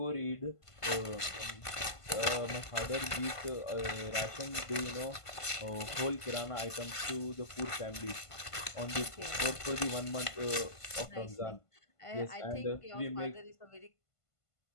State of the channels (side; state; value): right; late; 1.5 ms